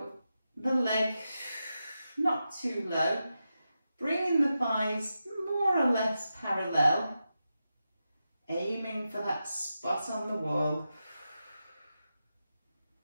the leg, not too low, bringing the thighs more or less parallel, aiming for that spot on the wall.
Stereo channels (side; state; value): both; inverted; correlation -0.90